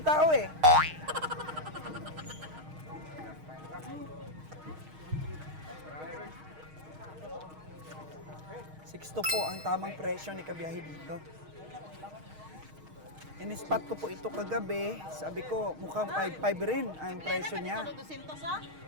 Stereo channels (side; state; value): left; late; 6.4 ms